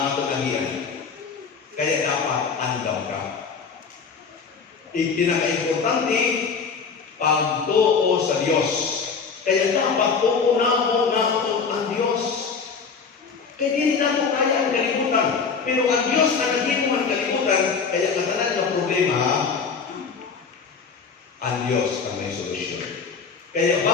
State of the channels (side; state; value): right; quieter; 5.5 dB